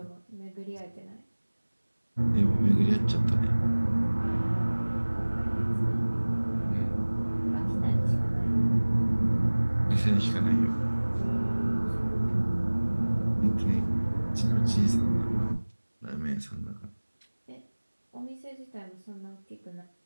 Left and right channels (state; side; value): inverted; both; correlation -1.00